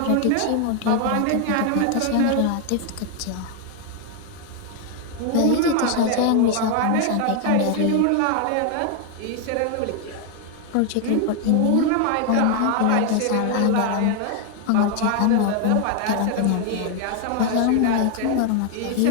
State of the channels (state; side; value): different; both; correlation 0.00